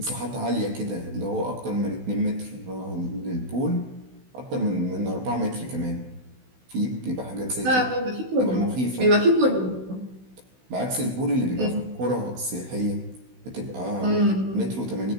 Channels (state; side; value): late; left; 16 ms